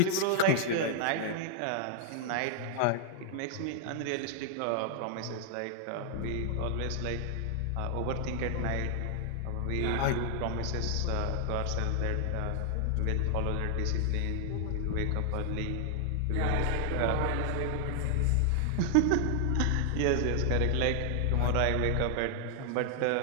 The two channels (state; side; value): different; both; correlation 0.00